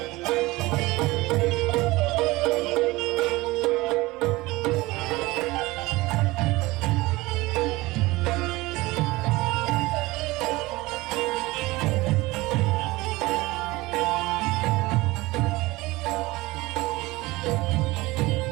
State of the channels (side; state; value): left; quieter; 20.7 dB